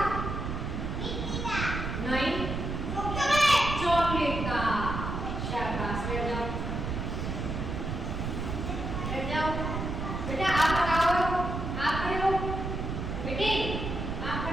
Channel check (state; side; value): noise; right; rumble, 3 dB below the sound